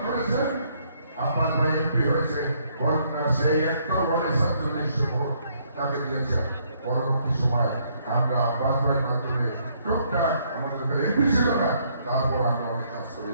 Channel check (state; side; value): inverted; both; correlation -0.69